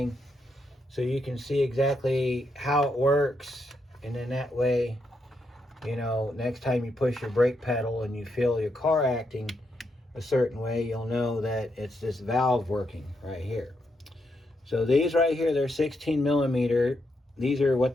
so you can see exactly how it works, and then that way, you know, next time you push your brake pedal and you feel your car acting a certain way, you'll know that it's this valve working right here. So these right here, they're 16 millimeter. These are what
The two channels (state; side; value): normal; both; correlation 0.81